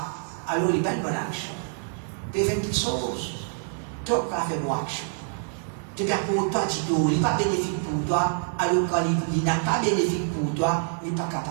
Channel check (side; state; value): left; silent; digital silence